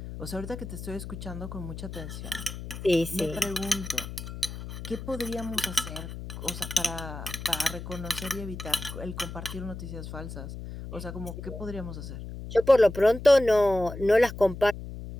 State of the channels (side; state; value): left; noise; hum, 9 dB below the sound